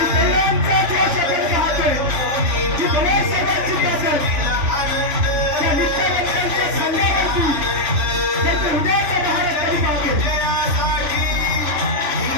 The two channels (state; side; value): late; left; 3.3 ms